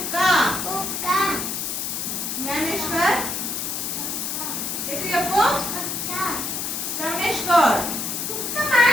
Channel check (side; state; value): left; noise; hiss, 3 dB below the sound